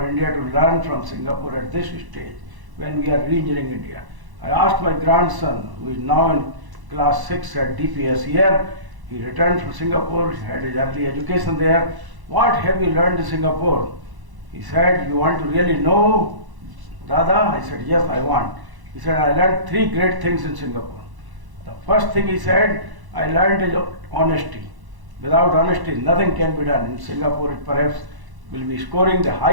India to learn from Singapore at this stage when we are re-engineering India. I asked my grandson, who is now in class 6 at DPS here, he returned from Singapore, he had his early education there. What have you learned in Singapore? He said, you want to really know, Dada? I said, yes, I want. He said, I learned 3 great things in Singapore. The first thing he said, I learned is honesty. Without honesty, nothing can be done. In Singapore, it perhaps will be scoring the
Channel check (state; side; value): late; left; 1.0 ms